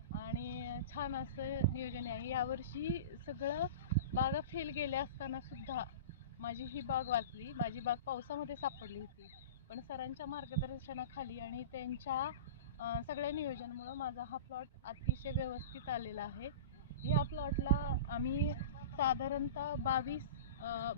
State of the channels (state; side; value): inverted; both; correlation -0.32